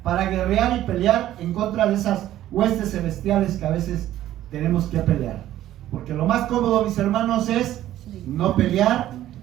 para guerrear y pelear en contra de esas huestes celestiales que a veces tenemos que pelear. Porque lo más cómodo, mis hermanos, es no pelear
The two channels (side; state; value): left; quieter; 13.2 dB